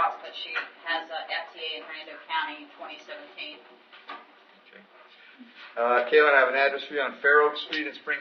but she has a FTA in Hernando County in 2017. Okay. Kaylin, I have an address for you on Fair Oak Street in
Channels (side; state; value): both; identical; correlation 1.00